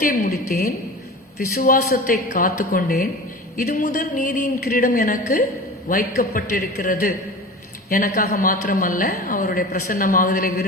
முடித்தேன், விசுவாசத்தை காத்து கொண்டேன், இது முதல் நீதியின் கிரீடம் எனக்கு வைக்கப்பட்டிருக்கிறது. எனக்காக மாத்திரமல்ல, அவருடைய பிரசன்னமாகுதலை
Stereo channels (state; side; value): normal; both; correlation 0.34